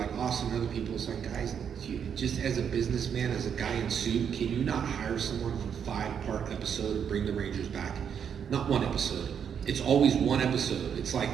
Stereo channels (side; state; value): left; quieter; 7.8 dB